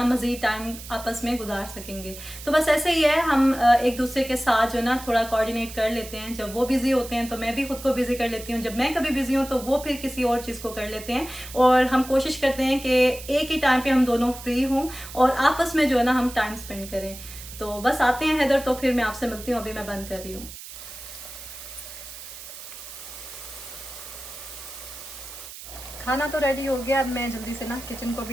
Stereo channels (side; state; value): right; noise; hiss, 13 dB below the sound